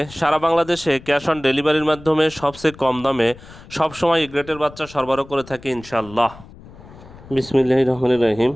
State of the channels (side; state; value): left; noise; rumble, 19 dB below the sound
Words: সারা বাংলাদেশে ক্যাশ অন ডেলিভারির মাধ্যমে সবচেয়ে কম দামে সবসময় এ গ্রেটের বাচ্চা সরবরাহ করে থাকি ইনশাল্লাহ। বিসমিল্লাহির রহমানির রহিম।